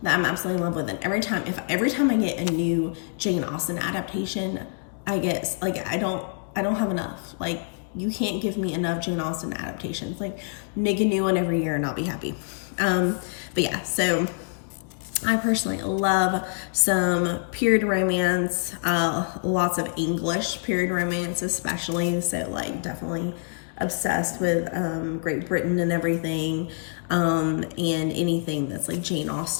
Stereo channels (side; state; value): right; silent; digital silence